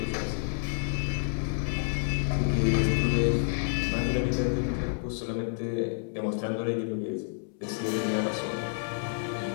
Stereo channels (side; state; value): right; silent; 58 dB below the other